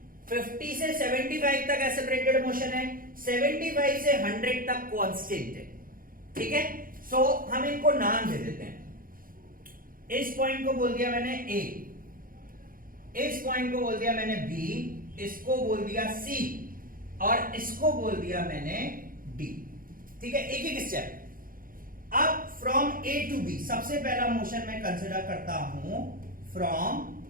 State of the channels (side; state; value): left; late; 0.41 ms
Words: 50 से 75 तक एक्सेलरेटेड मोशन है, 75 से 100 तक कांस्टेंट है, ठीक है। सो हम इनको नाम दे देते हैं। इस पॉइंट को बोल दिया मैंने ए, इस पॉइंट को बोल दिया मैंने बी, इसको बोल दिया सी और इसको बोल दिया मैंने डी, ठीक है। एक एक स्टेप। अब फ्रॉम ए टू बी सबसे पहला मोशन मैं कंसिडर करता हूं फ्रॉम